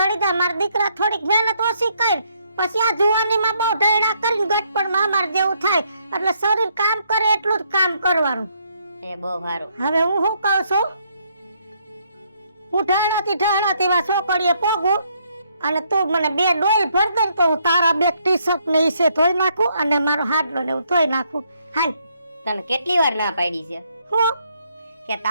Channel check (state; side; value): inverted; both; correlation -0.72